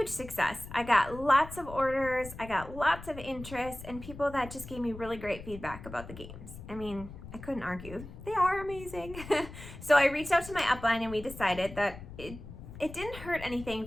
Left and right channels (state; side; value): noise; left; rumble, 13 dB below the sound